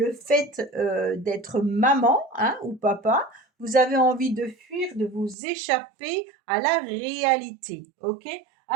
fait d'être maman, hein, ou papa. Vous avez envie de fuir, de vous échapper à la réalité, ok?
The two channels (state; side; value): drops out; left; at 5.4 s